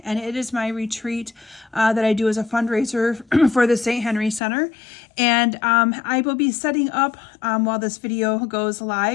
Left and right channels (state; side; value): drops out; right; at 4.4 s